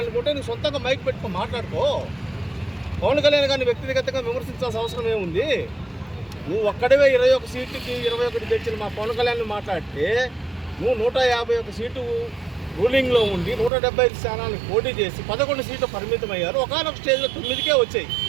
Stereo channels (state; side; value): drops out; left; at 13.7 s